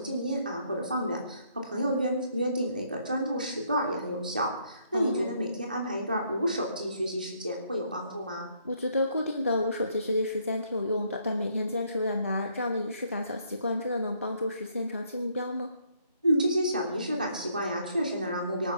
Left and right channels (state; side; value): inverted; both; correlation -0.70